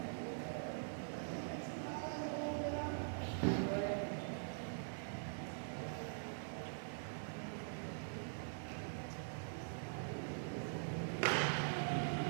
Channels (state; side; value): silent; left; digital silence